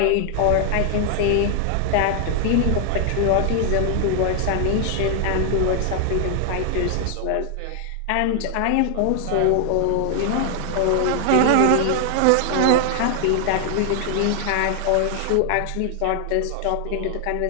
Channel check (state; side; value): different; both; correlation 0.00